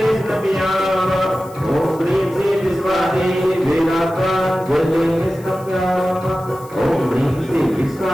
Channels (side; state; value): left; noise; hiss, 24 dB below the sound